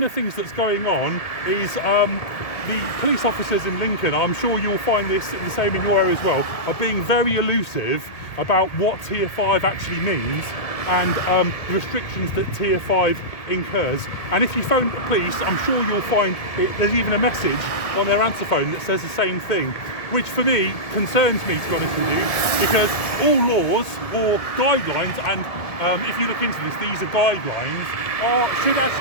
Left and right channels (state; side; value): late; right; 1.7 ms